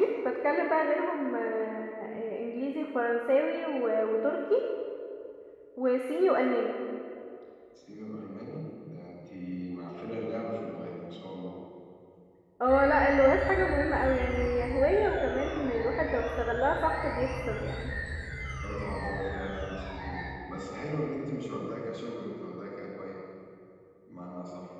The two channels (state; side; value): identical; both; correlation 1.00